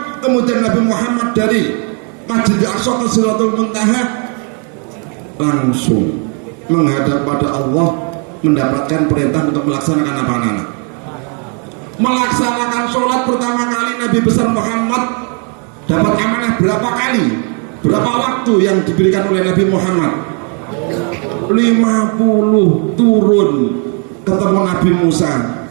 Kemudian Nabi Muhammad dari Masjidil Aqsa ke Sidratul Muntaha langsung menghadap pada Allah, mendapatkan perintah untuk melaksanakan apa, anak-anak? Melaksanakan sholat pertama kali Nabi besar Muhammad dapat amanah berapa kali? Berapa waktu yang diberikan oleh Nabi Muhammad? 50 turun ketemu Nabi Musa.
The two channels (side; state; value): left; quieter; 38.5 dB